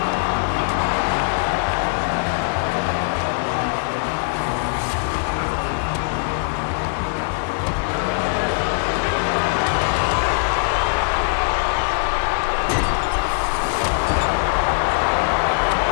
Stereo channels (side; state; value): right; silent; 65 dB below the other